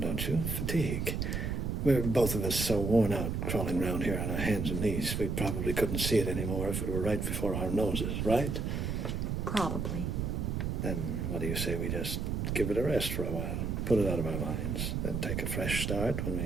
don't you? Fatigue. We're both of us so worn out crawling around here on our hands and knees, we probably couldn't see it anymore if it were right before our noses, right? Probably. Then what do you say we just give it a rest for a while, put it out of our minds, then take a fresh start when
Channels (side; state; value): right; noise; rumble, 1 dB below the sound